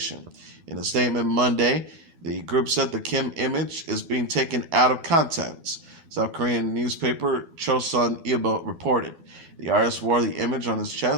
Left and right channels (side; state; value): left; late; 12 ms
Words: In a statement Monday, the group said the Kim image is being taken out of context. South Korean newspaper Chosun Ilbo reported. The artist wore the image on his